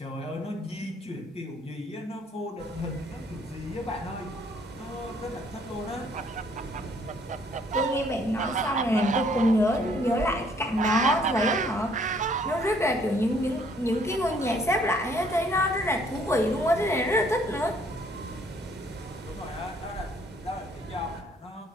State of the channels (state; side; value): normal; both; correlation 0.63